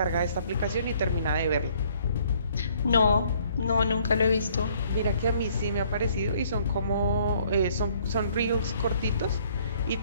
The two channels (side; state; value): both; inverted; correlation -0.62